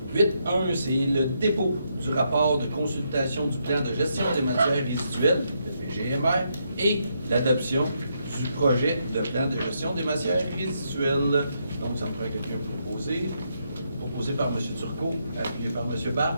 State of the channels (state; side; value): inverted; both; correlation -0.78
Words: 8.1, c'est le dépôt du rapport de consultation du plan de gestion des matières résiduelles, le PGMR, et l'adoption du projet de plan de gestion des matières résiduelles. Donc, ça me prend quelqu'un proposé. Proposé par M. Turcot, appuyé par M.